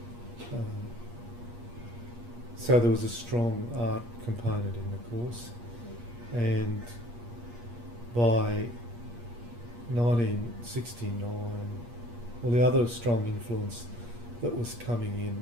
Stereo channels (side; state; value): left; late; 8.5 ms